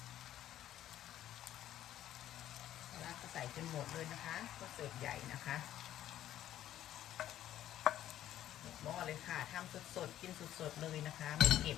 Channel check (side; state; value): right; quieter; 12.3 dB